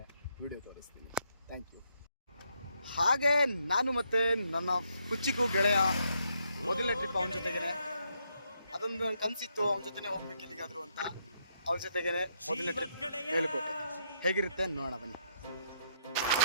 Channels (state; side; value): inverted; both; correlation -0.75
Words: ವಿಡಿಯೋ ತೋರಿಸ್ತೀನಿ. Thank you. ಹಾಗೆ ನಾನು ಮತ್ತು ನನ್ನ ಕುಚ್ಚಿಗೂ ಗೆಳೆಯ ಮೊದಲನೇ ಟ್ರಿಪ್ ಅವನ ಜೊತೆಗೇ. ಅದೊಂದು ಕನಸಿತ್ತು, ಅವನ ಜೊತೆನೇ ಹೋಗ್ಬೇಕು ಎಲ್ಲಿಗಾದ್ರು ಅಂತ. ಅವನ ಜೊತೆಗೇ ಮೊದಲನೇ ಟ್ರಿಪ್ ಮೇಲುಕೋಟೆ. ಹೇಗಿರುತ್ತೆ ನೋಡೋಣ ಬನ್ನಿ.